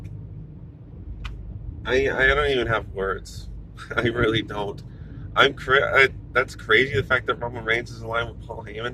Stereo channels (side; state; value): both; identical; correlation 1.00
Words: I don't even have words. I really don't. That's crazy. The fact that Roman Reigns is aligned with Paul